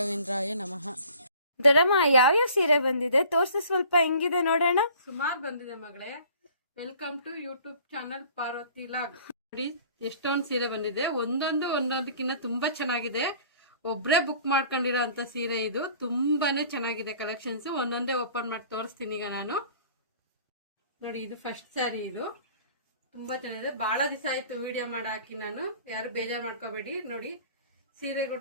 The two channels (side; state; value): both; inverted; correlation -0.51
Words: ನಮಃ. ದೊಡ್ಡಮ್ಮ ಯಾವ್ಯಾವ ಸೀರೆ ಬಂದಿದೆ ತೋರ್ಸು, ಸ್ವಲ್ಪ ಹೆಂಗಿದೆ ನೋಡೋಣ. ಸುಮಾರು ಬಂದಿದೆ ಮಗಳೇ. Welcome to YouTube channel Parvathi vlog. ನೋಡಿ ಎಷ್ಟೊಂದು ಸೀರೆ ಬಂದಿದೆ, ಒಂದೊಂದಕ್ಕಿಂತ ತುಂಬಾ ಚೆನ್ನಾಗಿದೆ. ಒಬ್ರೇ ಬುಕ್ ಮಾಡ್ಕೊಂಡಿರೋ ಅಂತ ಸೀರೆ ಇದು. ತುಂಬಾನೇ ಚೆನ್ನಾಗಿದೆ ಕಲೆಕ್ಷನ್ಸ್. ಒಂದೊಂದೇ ಓಪನ್ ಮಾಡಿ ತೋರಿಸ್ತೀನಿ ಈಗ ನಾನು. ನೋಡಿ ಇದು ಫಸ್ಟ್ ಸ್ಯಾರಿ. ಇದು ತುಂಬಾ ಚೆನ್ನಾಗಿದೆ. ಬಹಳ ದಿವಸ ಆಯ್ತು ವಿಡಿಯೋ ಮಾಡಿ ಹಾಕಿ ನಾನು, ಯಾರು ಬೇಜಾರು ಮಾಡ್ಕೋಬೇಡಿ. ನೋಡಿ ಸೀರೆ